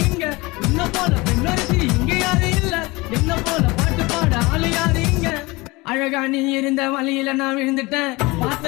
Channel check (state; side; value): quieter; right; 23.2 dB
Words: இங்க. உன்னை போல பெண்ணொருத்தி இங்க யாரும் இல்ல, என்ன போல பாட்டு பாட ஆளு யாரு இங்க. அழகா நீ இருந்த வழியில நான் விழுந்துட்டேன்,